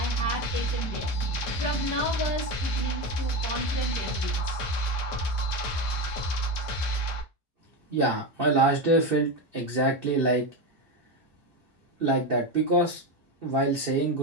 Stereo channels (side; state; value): both; normal; correlation 0.16